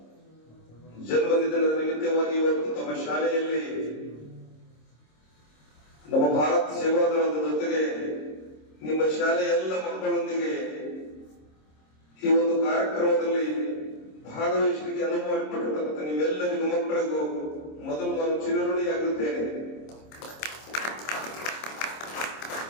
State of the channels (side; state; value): right; late; 26 ms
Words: ಜನ್ಮದಿನದ ನಿಮಿತ್ತವಾಗಿ ಇವತ್ತು ತಮ್ಮ ಶಾಲೆಯಲ್ಲಿ ನಮ್ಮ ಭಾರತ ಸೇವಾದಳದ ಜೊತೆಗೆ ನಿಮ್ಮ ಶಾಲೆಯ ಎಲ್ಲ ಮಕ್ಕಳೊಂದಿಗೆ ಈ ಒಂದು ಕಾರ್ಯಕ್ರಮದಲ್ಲಿ ಭಾಗವಹಿಸಲಿಕ್ಕೆ ಅನುವು ಮಾಡಿಕೊಟ್ಟಿರ್ತಕ್ಕಂಥ ನಿಮ್ಮೆಲ್ಲರಿಗೂ ಮಕ್ಕಳಿಗೂ ಮೊದಲು ನಾನು ಚಿರಋಣಿಯಾಗಿರುತ್ತೇನೆ.